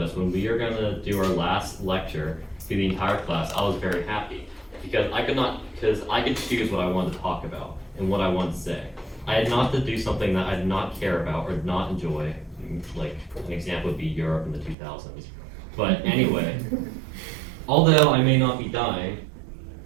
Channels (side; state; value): left; drops out; at 14.8 s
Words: us when we were gonna do our last lecture to the entire class, I was very happy. Because I could choose what I wanted to talk about and what I wanted to say. I had not to do something that I did not care about or did not enjoy, like an example would be Europe in the 2000s. But anyway, although I may not be dying,